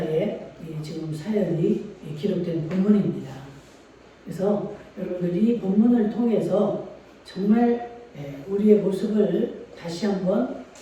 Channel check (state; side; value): identical; both; correlation 1.00